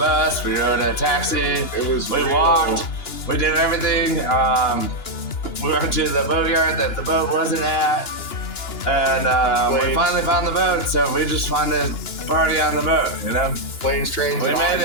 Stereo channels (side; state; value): right; late; 2.9 ms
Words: we rode a taxi, we walked, we did everything. We went to the boatyard that the boat wasn't at, and we finally found the boat, so we just wanted to party on the boat, you know? Planes, trains, We and made